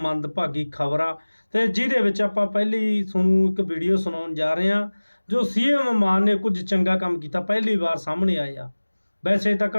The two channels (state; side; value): inverted; both; correlation -1.00